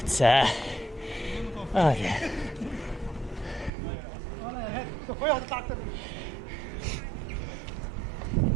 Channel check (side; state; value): left; drops out; at 3.7 s